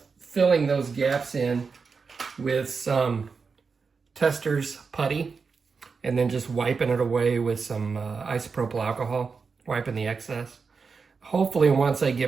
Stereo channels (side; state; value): left; quieter; 5.1 dB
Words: filling those gaps in with some Tester's putty and then just wiping it away with some isopropyl alcohol, wiping the excess. Hopefully once I